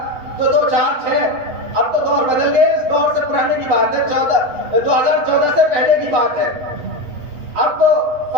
تو 2 4 6، اب تو دور بدل گئے، اس دور سے پرانے کی بات ہے، 2014 سے پہلے کی بات ہے۔ اب تو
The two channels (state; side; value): late; left; 8.2 ms